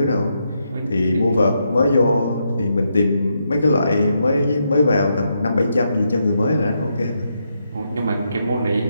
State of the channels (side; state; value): both; inverted; correlation -0.81